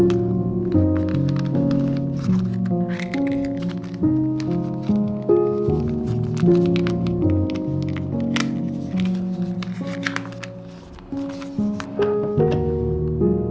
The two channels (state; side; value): identical; both; correlation 1.00